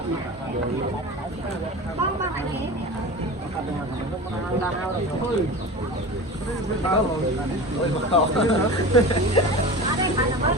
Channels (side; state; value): both; normal; correlation 0.32